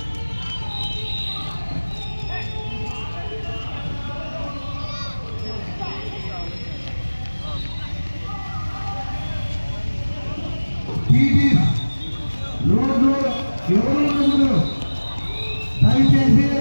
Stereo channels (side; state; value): both; inverted; correlation -1.00